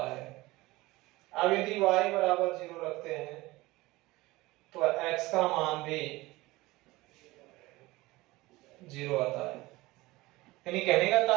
है। अब यदि y बराबर 0 रखते हैं तो x का मान भी 0 आता है। यानी कहने का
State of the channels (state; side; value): quieter; left; 20.2 dB